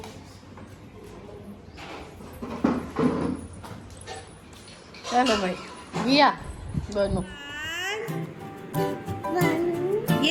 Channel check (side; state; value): both; identical; correlation 1.00